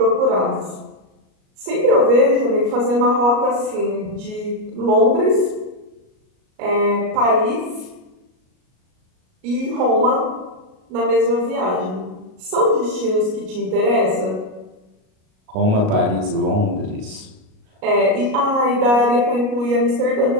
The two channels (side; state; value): left; late; 38 ms